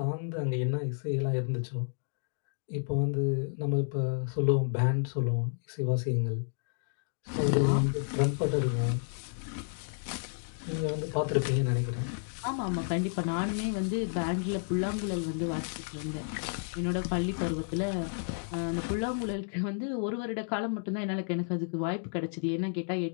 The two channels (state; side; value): silent; right; digital silence